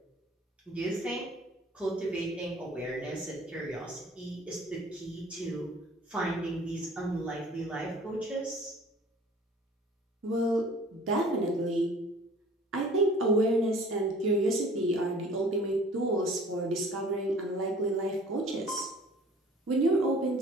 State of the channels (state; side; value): normal; both; correlation 0.49